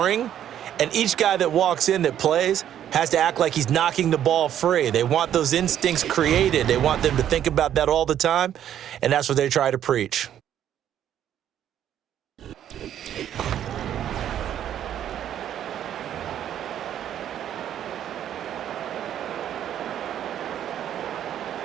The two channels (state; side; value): quieter; left; 10.5 dB